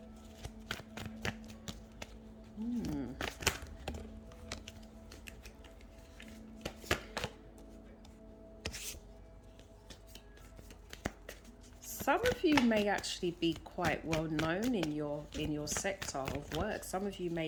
Some of you may actually be quite well known in your sector of work. Some of you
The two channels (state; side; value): identical; both; correlation 1.00